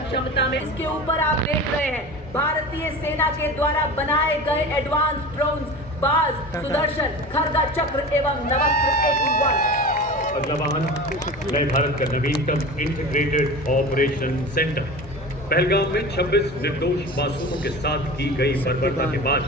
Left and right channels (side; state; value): both; normal; correlation 0.33